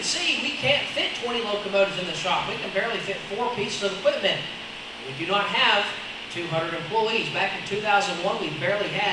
see, we can't fit 20 locomotives in the shop. We can barely fit 4 pieces of equipment. We do not have 200 employees. Back in 2001, we barely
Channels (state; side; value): identical; both; correlation 1.00